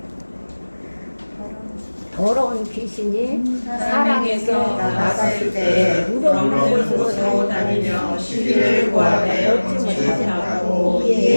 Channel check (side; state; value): both; inverted; correlation -1.00